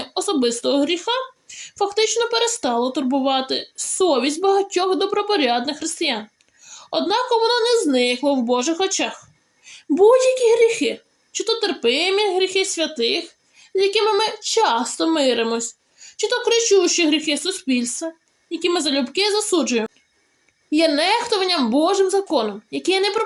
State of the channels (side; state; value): both; identical; correlation 1.00